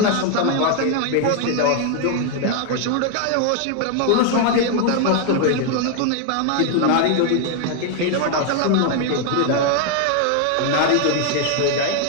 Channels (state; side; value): different; both; correlation 0.00